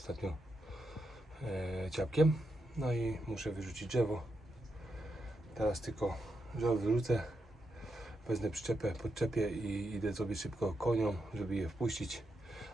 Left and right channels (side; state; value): both; normal; correlation 0.84